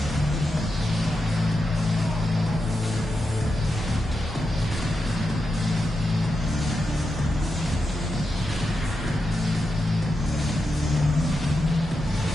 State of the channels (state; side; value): normal; both; correlation 0.88